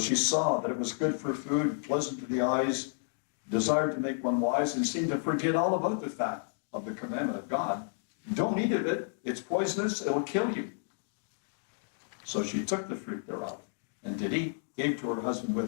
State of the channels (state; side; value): silent; right; digital silence